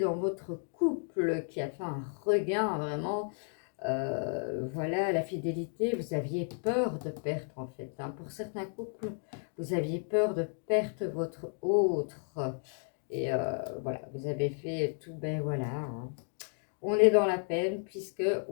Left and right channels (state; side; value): silent; right; 56 dB below the other